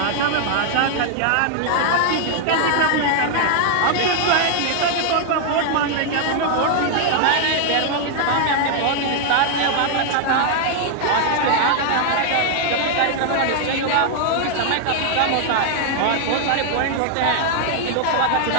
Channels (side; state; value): both; different; correlation 0.00